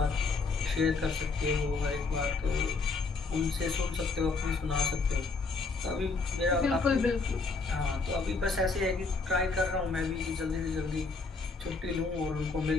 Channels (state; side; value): quieter; right; 4.1 dB